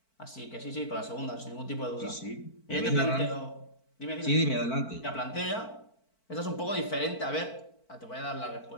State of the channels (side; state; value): right; late; 4.5 ms